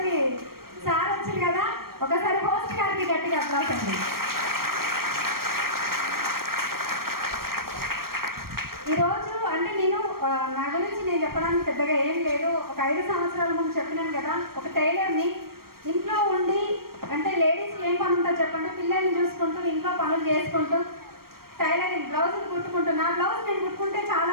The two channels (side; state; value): left; late; 0.94 ms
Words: సార్ వచ్చింది కదా. ఒకసారి హోస్ట్ గారికి గట్టిగా అప్లాస్ అండి. ఈరోజు అంటే నేను నా గురించి నేను చెప్పడానికి పెద్దగా ఏం లేదు. ఒక 5 సంవత్సరాల ముందు చెప్పినాను కదా, ఒక టైలర్ని. ఇంట్లో ఉండి అంటే లేడీస్కి ఏం పని ఉంటుందో చెప్పండి, పిల్లల్ని చూసుకుంటూ ఇంట్లో పనులు చేసుకుంటూ టైలరింగ్ బ్లౌజులు కుట్టుకుంటున్నా. బ్లౌజ్ నేను కుట్టుకుంటే చాలా